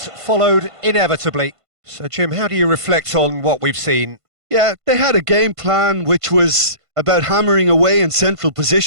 followed inevitably. So Jim, how do you reflect on what we've seen? Yeah, they had a game plan which was about hammering away in central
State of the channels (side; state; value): left; late; 1.5 ms